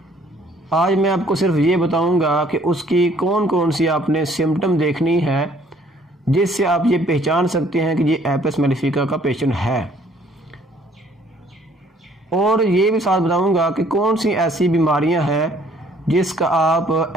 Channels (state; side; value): normal; both; correlation 0.60